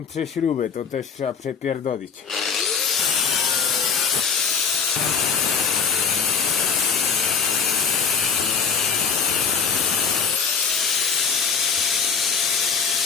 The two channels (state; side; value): quieter; right; 6.1 dB